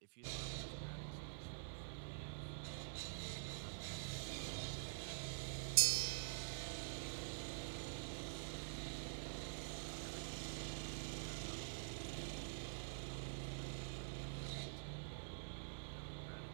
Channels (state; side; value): silent; left; digital silence